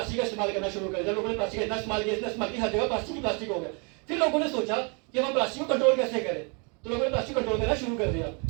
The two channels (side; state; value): left; quieter; 33.6 dB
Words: का इस्तेमाल करना शुरू कर दिया। लोगों ने प्लास्टिक का इतना इस्तेमाल किया, हर जगह प्लास्टिक ही प्लास्टिक हो गया। फिर लोगों ने सोचा कि हम प्लास्टिक को कंट्रोल कैसे करें, तो लोगों ने प्लास्टिक कंट्रोल करना शुरू कर दिया।